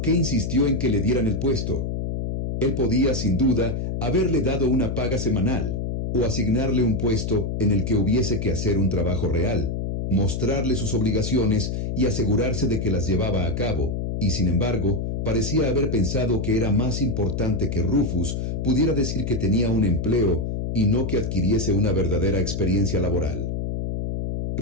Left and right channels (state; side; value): noise; left; hum, 2 dB below the sound